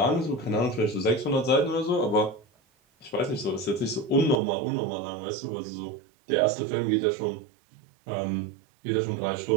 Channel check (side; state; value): left; drops out; at 4.4 s